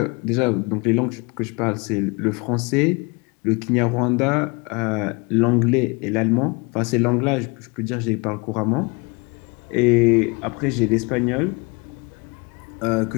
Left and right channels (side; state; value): right; quieter; 29.3 dB